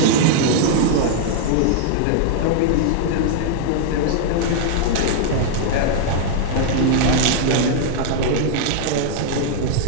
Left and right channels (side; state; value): both; different; correlation -0.01